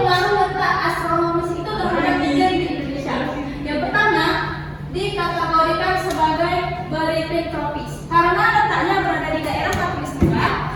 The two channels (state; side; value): identical; both; correlation 1.00